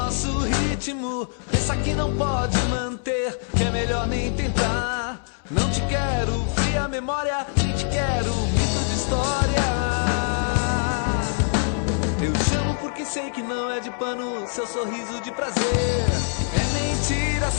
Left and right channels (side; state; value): right; silent; 63 dB below the other